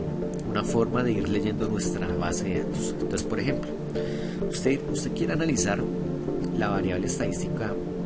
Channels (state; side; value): identical; both; correlation 1.00